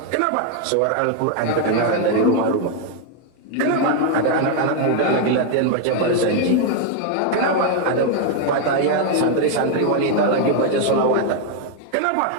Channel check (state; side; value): different; both; correlation 0.00